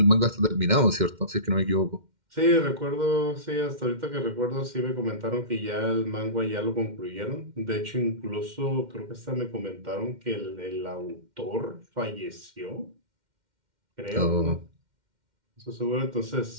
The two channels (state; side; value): late; left; 2.1 ms